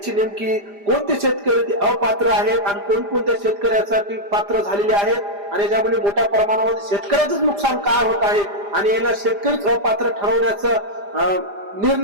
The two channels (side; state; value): left; late; 5.0 ms